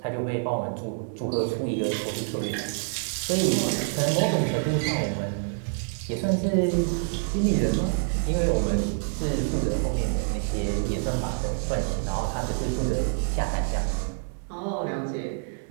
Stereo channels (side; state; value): left; silent; 60 dB below the other